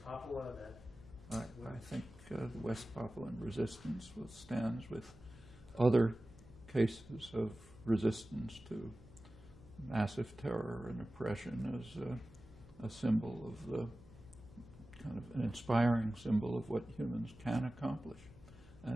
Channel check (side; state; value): right; noise; hum, 24 dB below the sound